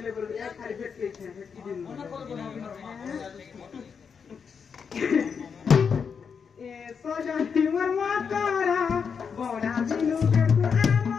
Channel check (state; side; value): quieter; right; 6.3 dB